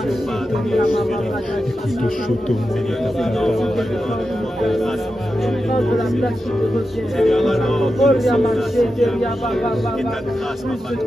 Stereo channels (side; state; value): both; normal; correlation 0.90